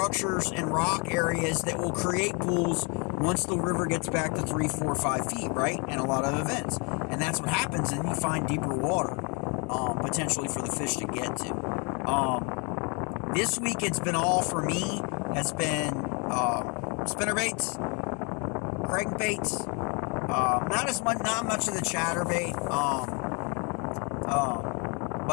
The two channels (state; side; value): quieter; right; 33.1 dB